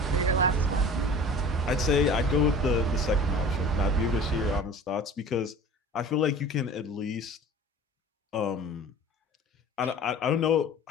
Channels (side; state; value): both; normal; correlation 0.41